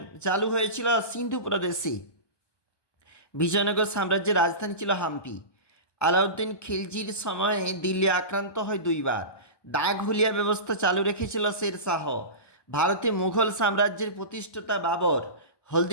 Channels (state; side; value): late; right; 1.2 ms